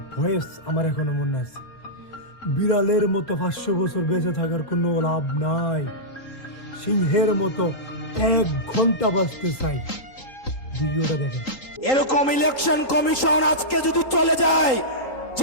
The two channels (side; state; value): right; late; 3.8 ms